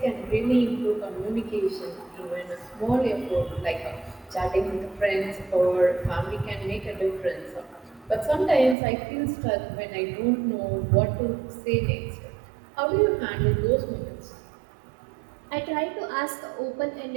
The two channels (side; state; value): left; drops out; at 8.8 s